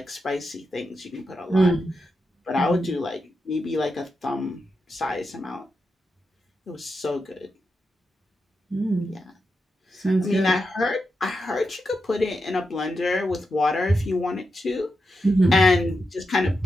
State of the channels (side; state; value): both; normal; correlation 0.87